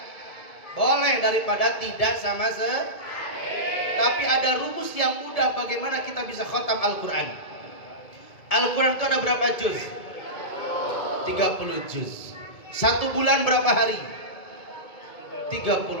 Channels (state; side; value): late; right; 2.2 ms